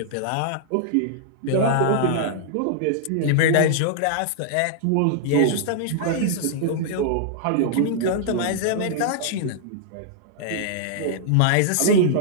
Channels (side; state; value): both; different; correlation -0.01